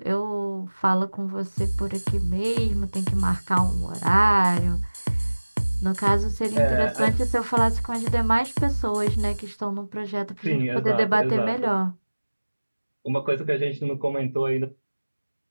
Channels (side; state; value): both; inverted; correlation -1.00